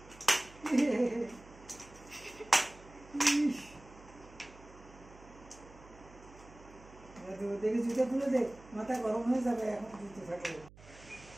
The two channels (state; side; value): noise; right; hum, 21 dB below the sound